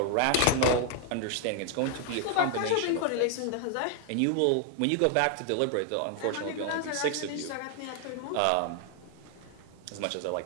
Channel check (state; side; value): different; both; correlation 0.00